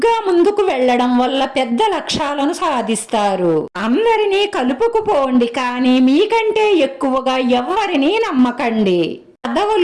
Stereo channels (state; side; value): identical; both; correlation 1.00